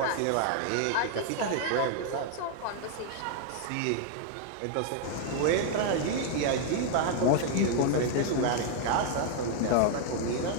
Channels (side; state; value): both; different; correlation 0.00